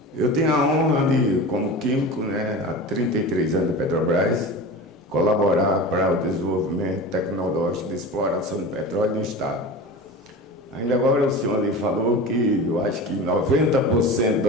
Eu tenho a honra de, como químico, né, há 33 anos de Petrobras, colaborar para o desenvolvimento tecnológico de exploração de petróleo no Estado. Ainda agora o senhor ali falou que eu acho que 90%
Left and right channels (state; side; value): normal; both; correlation 0.31